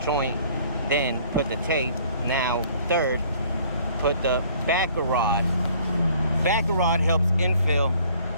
joint, then put the tape. Now third, put the backer rod. Backer rod helps infill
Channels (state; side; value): inverted; both; correlation -0.57